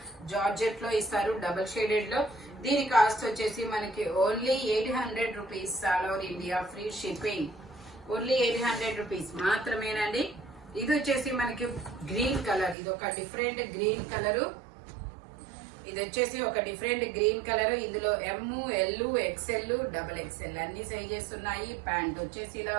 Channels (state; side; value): drops out; left; at 12.8 s